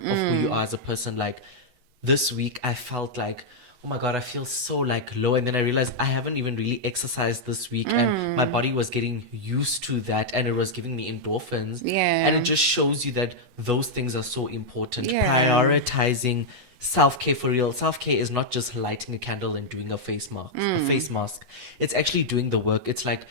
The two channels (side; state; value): left; late; 11 ms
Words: of who you are as a person. Like this week, I felt like, oh my god, I feel so like low, and then I realized I haven't even really exercised this week, and my body was getting used to that, and it was giving me endorphins. And Yeah. it just shows you that those things are so important. Yeah. Prioritizing self-care for real. Self-care is not just lighting a candle and doing a face mask. It's actually doing the work. It's like